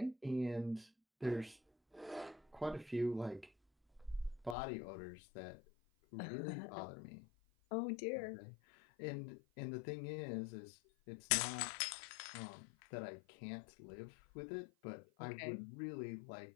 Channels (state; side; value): drops out; right; at 4.5 s